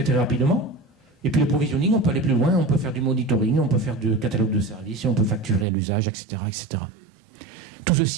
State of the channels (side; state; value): left; drops out; at 5.7 s